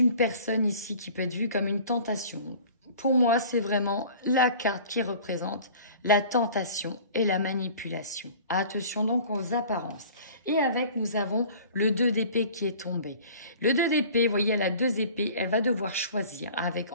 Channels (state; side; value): inverted; both; correlation -0.45